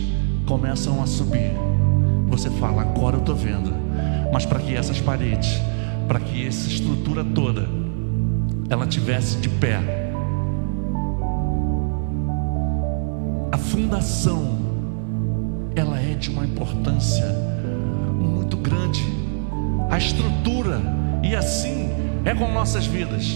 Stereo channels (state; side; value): silent; left; digital silence